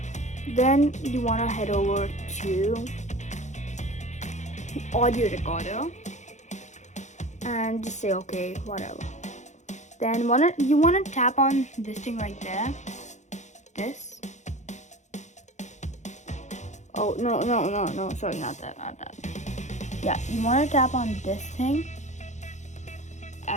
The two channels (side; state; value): right; late; 0.34 ms